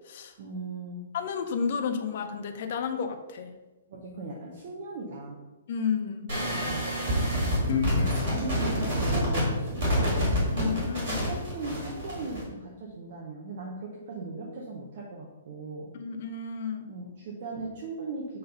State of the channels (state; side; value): inverted; both; correlation -0.52